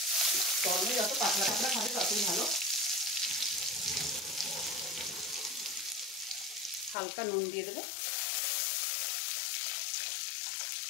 গরমে যত পাতলা পাতলা খাবে ততই ভালো। হালকা নুন দিয়ে দেবে,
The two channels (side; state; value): right; drops out; at 7.0 s